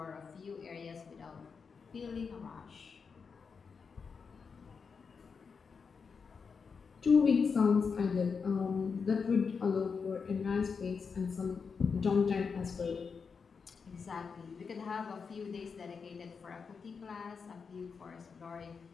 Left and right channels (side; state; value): right; quieter; 5.6 dB